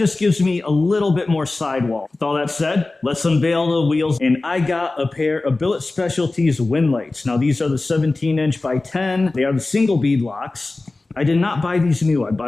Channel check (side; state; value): right; quieter; 3.2 dB